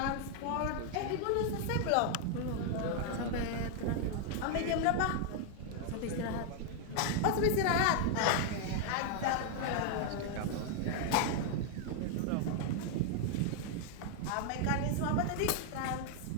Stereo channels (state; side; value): different; both; correlation 0.00